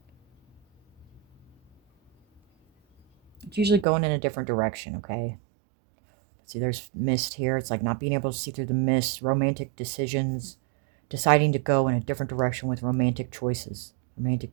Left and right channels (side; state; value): left; drops out; at 3.9 s